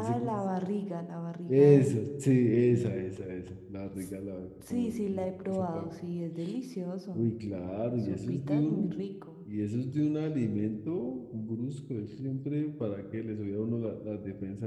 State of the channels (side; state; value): both; identical; correlation 1.00